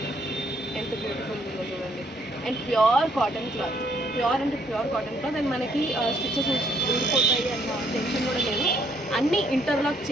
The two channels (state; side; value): normal; both; correlation 0.69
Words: ఎంత బ్యూటిఫుల్ ఉందో చూడండి. And pure cotton cloth, pure అంటే ప్యూర్ కాటన్ క్లాత్. అండ్ మనకి స్టిచెస్ ఊడిపోతాయి అన్న టెన్షన్ కూడా లేదు. అన్నీ ఇంటర్లాక్